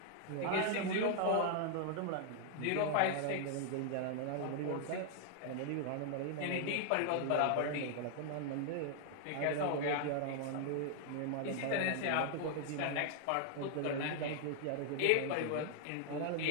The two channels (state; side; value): different; both; correlation 0.00